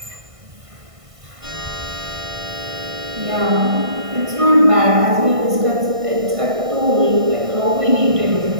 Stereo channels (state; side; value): late; left; 1.5 ms